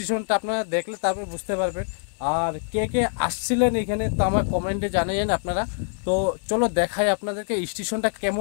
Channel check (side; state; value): right; silent; digital silence